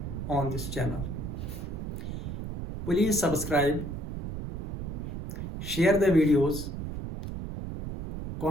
on this channel. Please subscribe, share the videos,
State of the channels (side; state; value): right; noise; rumble, 6 dB below the sound